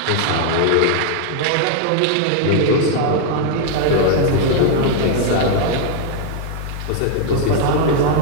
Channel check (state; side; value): different; both; correlation 0.00